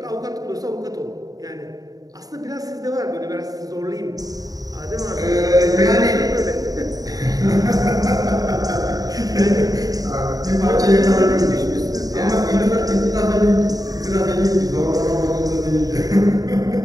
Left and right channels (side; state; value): left; late; 0.18 ms